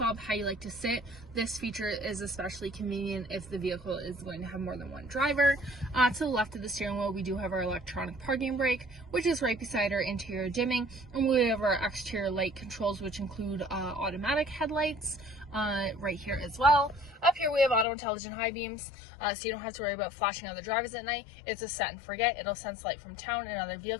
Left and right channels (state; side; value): drops out; right; at 17.9 s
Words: how you like to sit. This feature is especially convenient if the vehicle is going to have more than one driver. To the left of the steering wheel, we do have our electronic parking brake, which is right beside our interior dimming, and we have our exterior light controls, which include automatic headlights, right here as well. Up here we have auto intelligent high beams, so you don't have to worry about flashing other drivers at night. It's a set and forget. It'll sense light from town and other